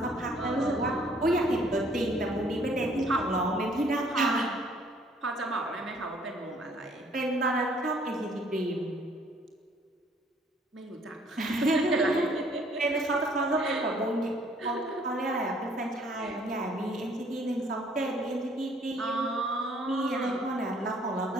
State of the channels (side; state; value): both; normal; correlation 0.61